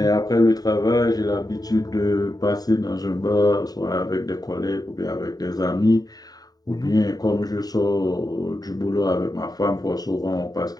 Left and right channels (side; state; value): right; late; 0.18 ms